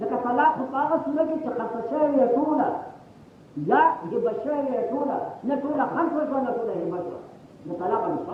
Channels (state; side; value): identical; both; correlation 1.00